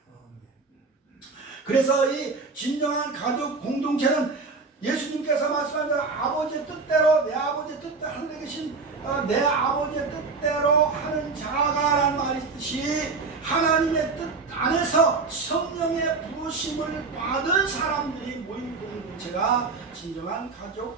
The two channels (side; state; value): left; quieter; 4.3 dB